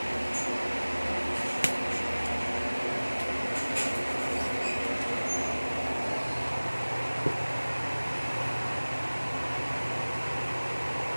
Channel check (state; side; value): inverted; both; correlation -1.00